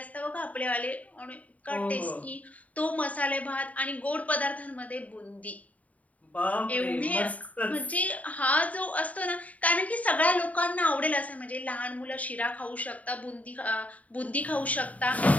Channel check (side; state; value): right; late; 0.070 ms